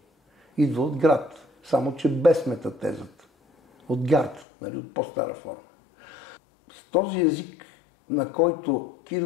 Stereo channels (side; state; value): right; drops out; at 4.5 s